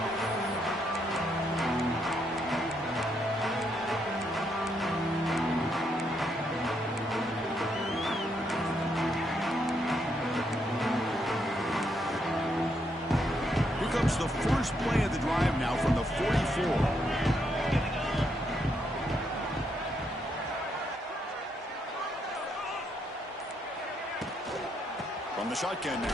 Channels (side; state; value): both; normal; correlation 0.77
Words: The first play of the drive now from the 44. From the shotgun